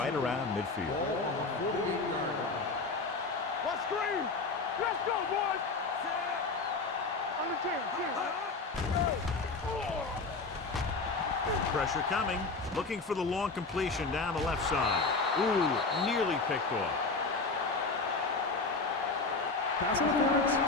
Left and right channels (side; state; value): right; quieter; 3.9 dB